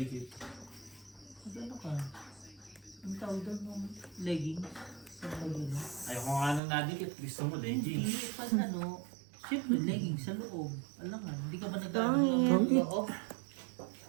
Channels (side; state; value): left; drops out; at 6.6 s